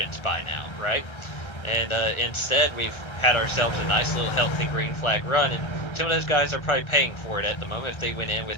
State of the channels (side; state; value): right; late; 1.3 ms